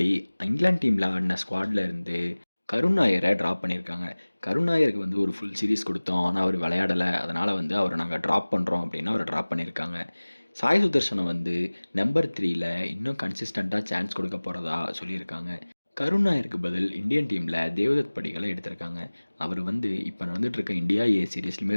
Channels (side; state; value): both; inverted; correlation -1.00